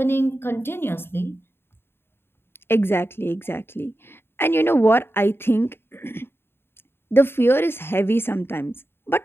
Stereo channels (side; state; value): right; late; 0.11 ms